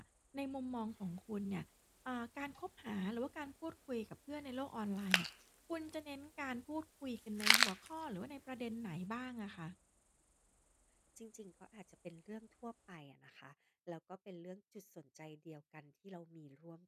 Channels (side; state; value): both; identical; correlation 1.00